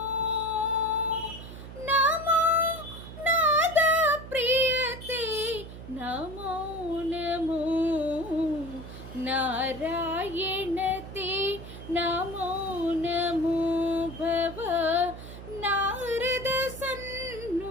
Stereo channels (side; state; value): right; noise; hum, 13 dB below the sound